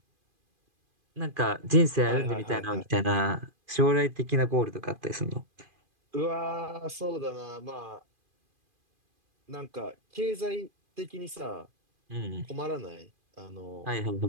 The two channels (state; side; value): late; left; 2.4 ms